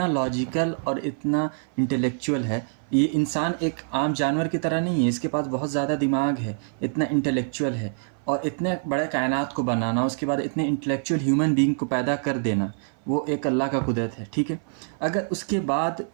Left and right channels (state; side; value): silent; left; 56 dB below the other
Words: لاجیکل اور اتنا انٹلیکچوئل ہے۔ یہ انسان ایک عام جانور کی طرح نہیں ہے، اس کے پاس بہت زیادہ دماغ ہے، اتنا انٹلیکچوئل ہے، اور اتنے بڑے کائنات کو بنانا، اس کے بعد اتنے انٹلیکچوئل ہیومن بینگ کو پیدا کر دینا، وہ ایک اللہ کا قدرت ہے، ٹھیک ہے۔ اگر اس کے بعد